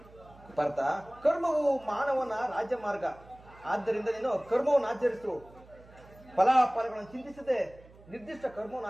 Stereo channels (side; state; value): right; noise; hum, 23 dB below the sound